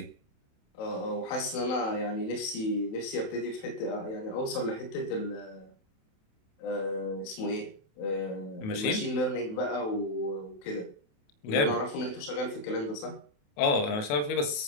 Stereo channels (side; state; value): right; late; 27 ms